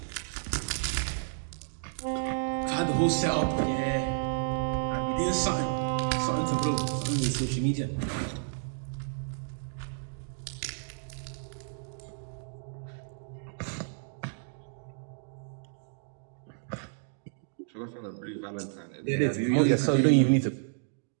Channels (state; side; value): silent; left; digital silence